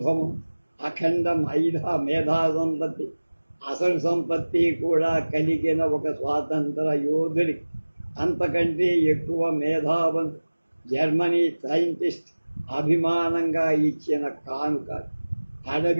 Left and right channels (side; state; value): both; inverted; correlation -1.00